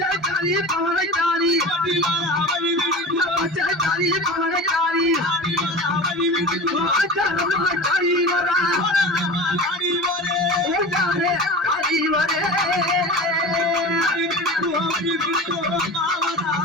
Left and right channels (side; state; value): both; normal; correlation 0.32